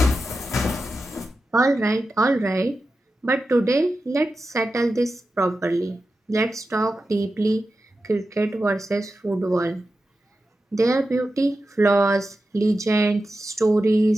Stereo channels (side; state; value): both; normal; correlation 0.91